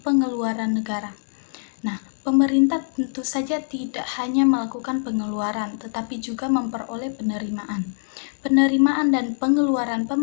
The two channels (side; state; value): right; silent; digital silence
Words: pengeluaran negara? Nah, pemerintah tentu saja tidak hanya melakukan pengeluaran, tetapi juga memperoleh penerimaan. Penerimaan dan pengeluaran